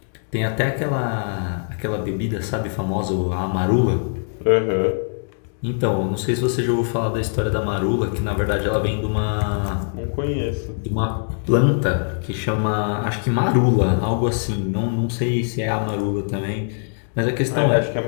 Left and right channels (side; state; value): right; silent; digital silence